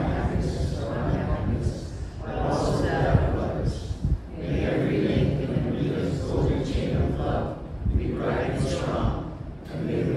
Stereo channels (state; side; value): identical; both; correlation 1.00